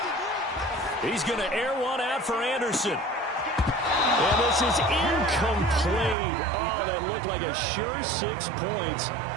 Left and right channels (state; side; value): drops out; left; at 6.2 s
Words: He's going to air one out for Anderson. And this is incomplete. Oh, that looked like a sure 6 points,